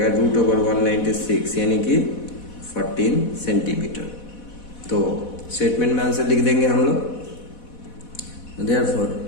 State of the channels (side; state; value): right; late; 4.1 ms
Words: √196 यानी कि 14 सेंटीमीटर। तो स्टेटमेंट में आंसर लिख देंगे हम लोग। Therefore